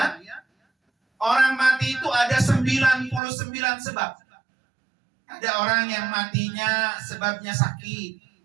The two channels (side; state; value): left; drops out; at 3.2 s